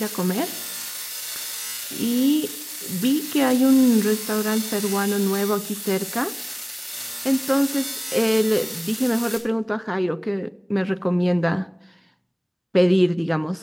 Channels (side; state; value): both; identical; correlation 1.00